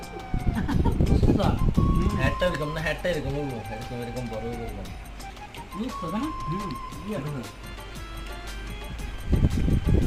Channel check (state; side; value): identical; both; correlation 1.00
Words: হ্যাটটা এরকম না, হ্যাটটা এরকম হইবো, এরকম এরকম বড় হইবো এরকম।